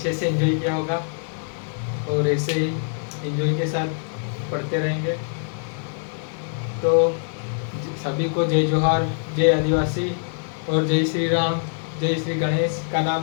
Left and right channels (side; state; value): right; silent; digital silence